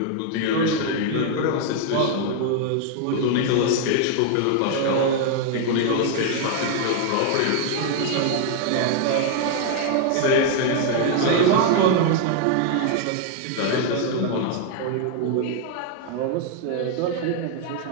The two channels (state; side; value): different; both; correlation 0.00